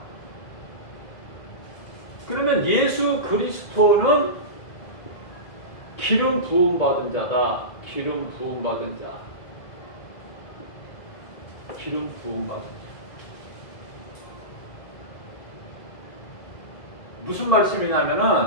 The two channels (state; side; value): late; right; 2.0 ms